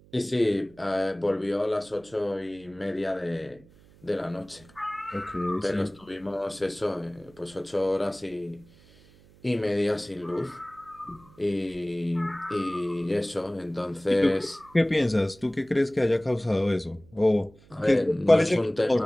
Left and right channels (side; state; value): right; noise; hum, 26 dB below the sound